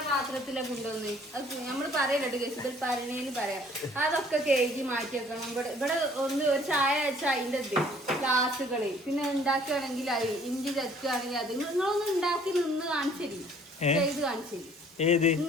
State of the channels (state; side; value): normal; both; correlation 0.57